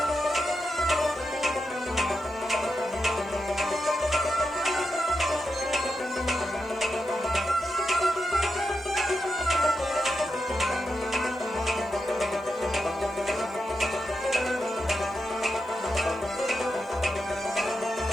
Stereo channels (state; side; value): noise; right; hiss, 30 dB below the sound